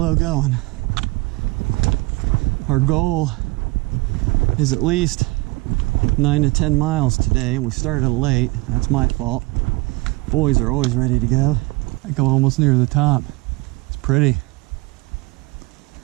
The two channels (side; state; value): left; quieter; 23.3 dB